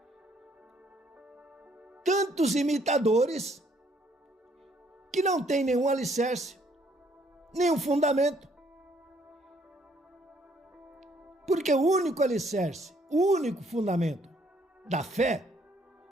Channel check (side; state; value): both; normal; correlation 0.66